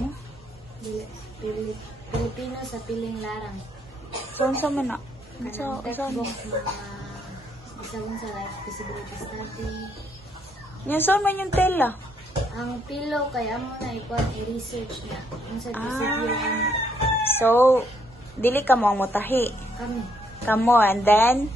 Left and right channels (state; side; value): normal; both; correlation 0.72